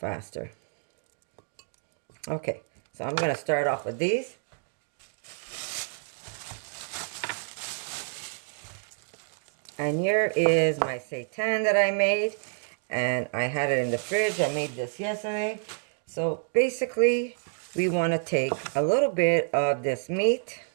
Okay, so I'm gonna start off with these. And here is my seitan that I made, and I had it in the fridge. I made this yesterday. So basically, we want to take a little bit of this meat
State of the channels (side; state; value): left; silent; 59 dB below the other